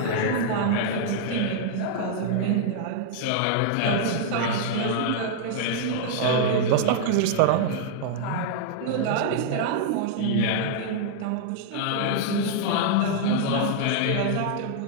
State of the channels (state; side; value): different; both; correlation -0.01